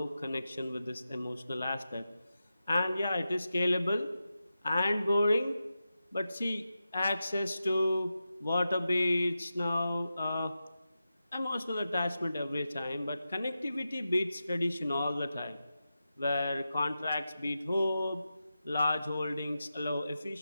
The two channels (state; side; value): inverted; both; correlation -0.91